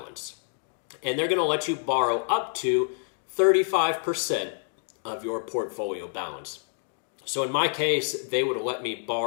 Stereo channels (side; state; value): right; silent; digital silence